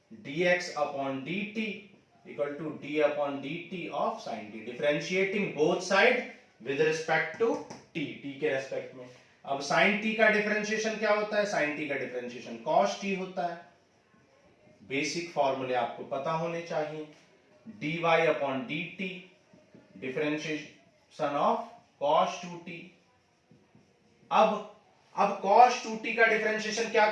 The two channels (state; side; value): identical; both; correlation 1.00